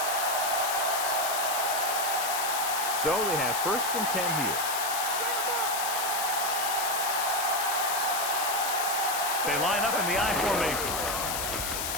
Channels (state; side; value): noise; left; hiss, 2 dB below the sound